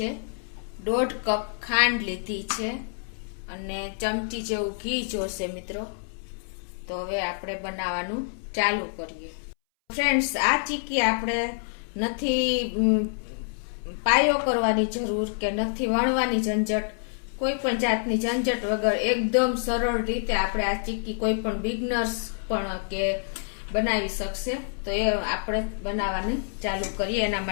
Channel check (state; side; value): silent; right; 60 dB below the other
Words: 1.5 કપ ખાંડ લીધી છે અને ચમચી જેવું ઘી જોશે મિત્રો। તો હવે આપણે બનાવવાનું ચાલુ કરીએ। ફ્રેન્ડ્સ, આ ચીક્કી આપણે નથી પાયો કરવાની જરૂર કે નથી વણવાની ઝંઝટ, કોઈ પણ જાતની ઝંઝટ વગર એકદમ સરળ રીતે આપણે આ ચીક્કી કોઈ પણ બિગનર્સ પણ કે બનાવી શકશે। તો એ આપણે બનાવવાની ચાલુ કરીએ। એના